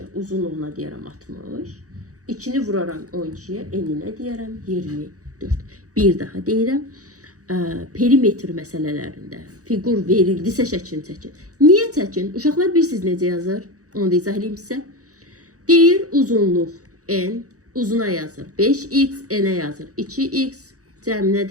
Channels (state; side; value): late; left; 0.66 ms